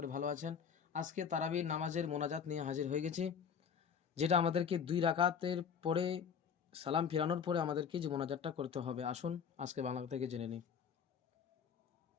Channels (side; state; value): right; quieter; 7.2 dB